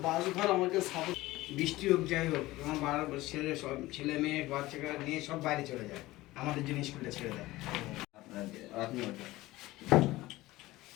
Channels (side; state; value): right; quieter; 18.3 dB